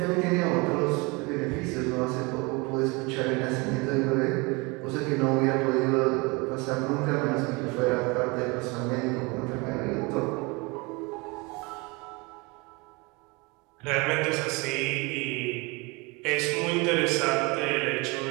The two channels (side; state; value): left; quieter; 27.1 dB